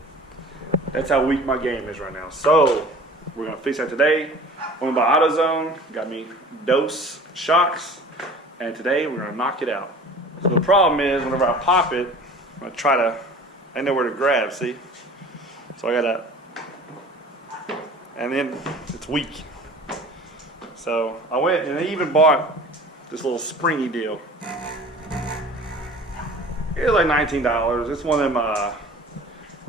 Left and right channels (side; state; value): both; normal; correlation 0.43